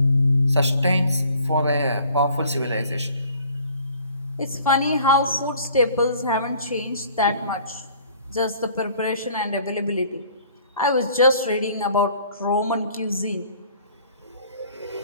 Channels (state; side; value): inverted; both; correlation -0.54